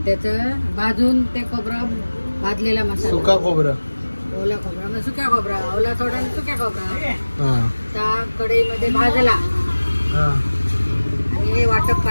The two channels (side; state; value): both; inverted; correlation -1.00